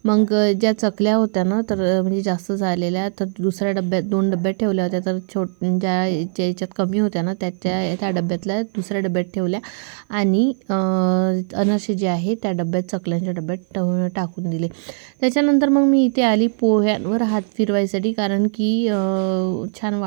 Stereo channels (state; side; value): silent; left; 55 dB below the other